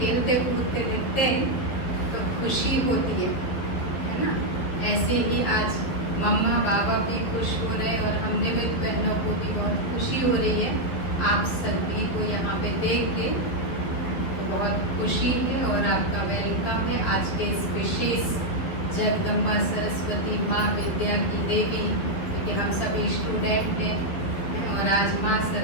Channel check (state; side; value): late; right; 12 ms